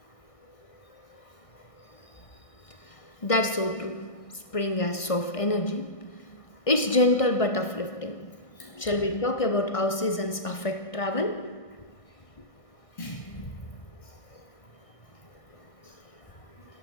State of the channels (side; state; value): right; late; 1.6 ms